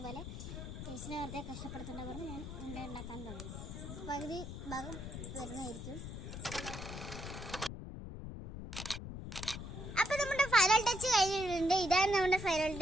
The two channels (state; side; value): noise; left; rumble, 8 dB below the sound